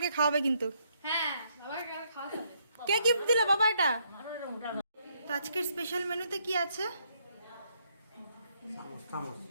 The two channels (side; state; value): both; inverted; correlation -0.73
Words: খাওয়াবে কিন্তু। হ্যাঁ বাবা কাল খাওয়া যাবে। কে গিফট দিল বাবা এটা? তো আজকের স্পেশাল মেনুতে কি আছে?